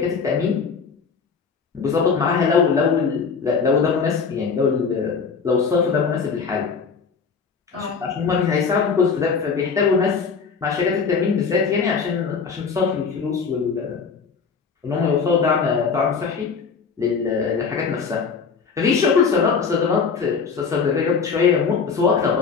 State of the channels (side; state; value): right; quieter; 5.6 dB